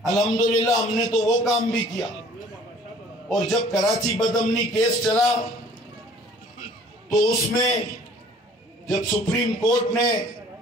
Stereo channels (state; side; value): normal; both; correlation 0.53